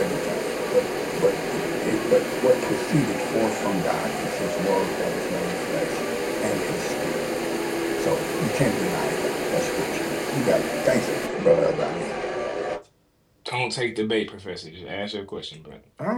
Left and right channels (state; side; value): identical; both; correlation 1.00